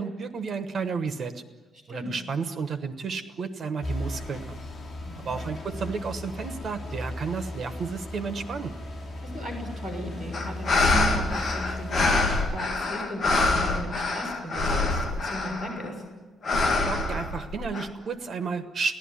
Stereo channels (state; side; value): normal; both; correlation 0.70